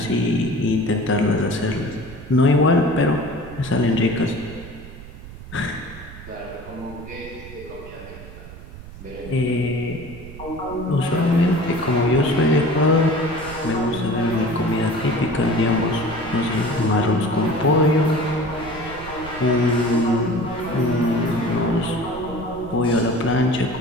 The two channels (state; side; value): noise; right; rumble, 15 dB below the sound